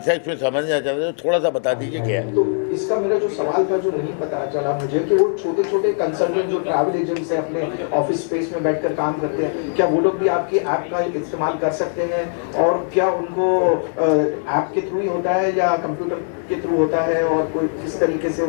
में समझना चाहते हैं तो थोड़ा सा बता दीजिए क्या है। तो इसका मेरा जो सवाल था जो नहीं पता चला मुझे कि वो छोटे छोटे कंसल्टेंट जो ट्रैवल एजेंट्स हैं अपने ऑफिस स्पेस में बैठकर काम करते हैं, क्या वो लोग भी आपकी ऐप का इस्तेमाल कर सकते हैं? और क्या उनको ऐप के थ्रू ही होता है या कंप्यूटर के थ्रू होता है, और कोई किस तरीके से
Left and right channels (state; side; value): silent; right; digital silence